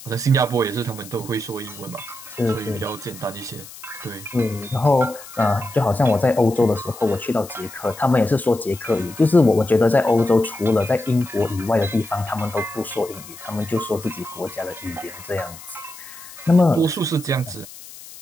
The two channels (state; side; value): noise; left; hiss, 17 dB below the sound